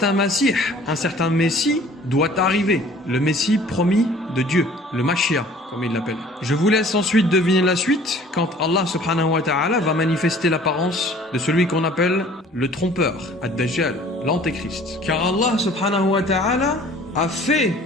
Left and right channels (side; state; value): both; normal; correlation 0.51